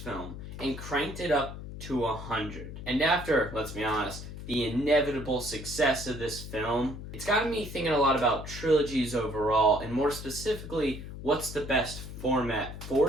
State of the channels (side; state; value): left; noise; hum, 10 dB below the sound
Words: film and cranked it up to 100. And after, let's be honest, the inevitable success of this film, it's gotten me thinking a lot about trilogies overall, and more specifically, what's the best format